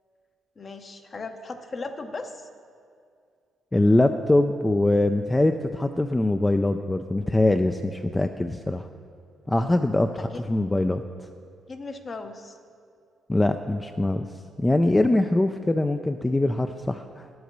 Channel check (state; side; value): normal; both; correlation 0.97